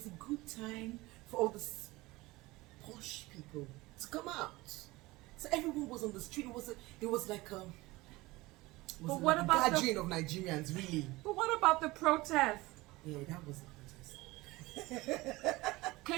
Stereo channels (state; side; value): quieter; left; 20.6 dB